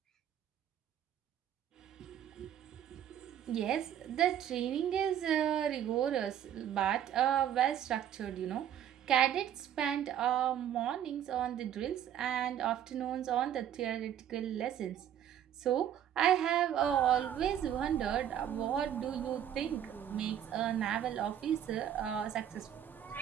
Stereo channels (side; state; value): left; quieter; 10.2 dB